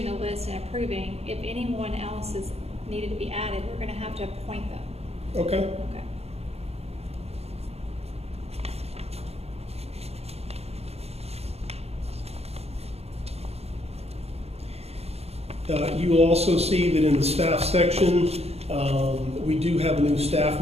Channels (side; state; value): left; late; 0.30 ms